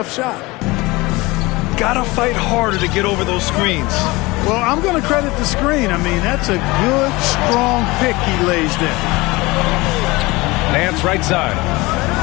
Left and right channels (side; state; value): right; quieter; 22.3 dB